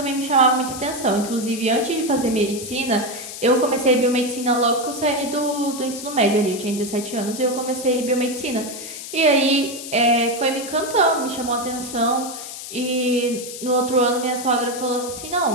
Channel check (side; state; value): left; noise; hiss, 10 dB below the sound